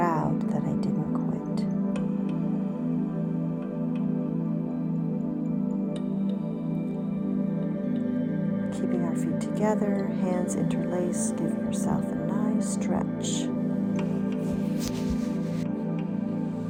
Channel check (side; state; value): both; identical; correlation 1.00